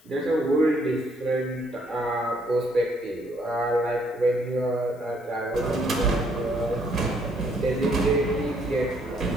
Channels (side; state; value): left; noise; hiss, 29 dB below the sound